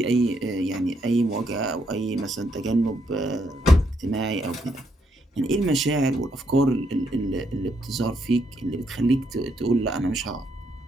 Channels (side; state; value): both; normal; correlation 0.76